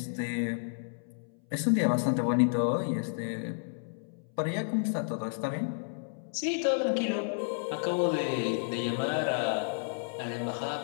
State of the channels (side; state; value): right; silent; 57 dB below the other